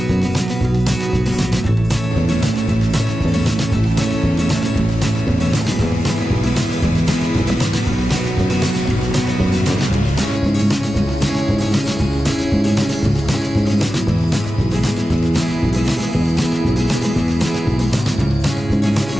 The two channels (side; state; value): both; normal; correlation 0.92